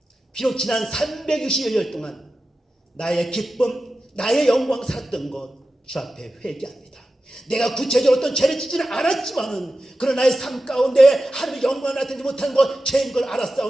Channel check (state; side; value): normal; both; correlation 0.93